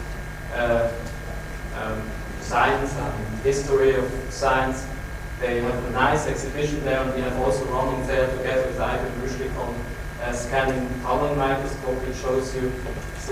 science and history of science. They have a nice exhibition there, and we have also running there together with Ivan Rushlik on scanning tunnel microscope, which shows you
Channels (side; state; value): both; identical; correlation 1.00